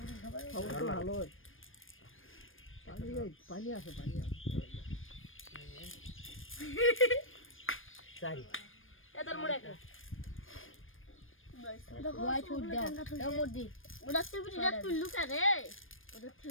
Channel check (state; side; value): late; right; 0.59 ms